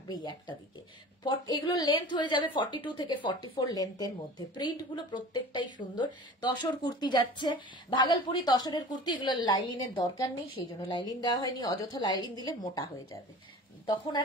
একটা দিকে। এগুলো লেন্থ হয়ে যাবে 42 থেকে 44 লেন্থের মধ্যে। প্রিন্ট গুলো প্রত্যেকটাই সুন্দর। তসর কুর্তি যাচ্ছে, ভাগলপুরি তসরের কুর্তি। এগুলো লাইলিনের দরকার নেই, সেই জন্য লাইলিন দেওয়া হয়নি। অযথা লাইলিন দিলে মোটা হয়ে যাবে, তখন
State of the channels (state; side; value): normal; both; correlation 0.39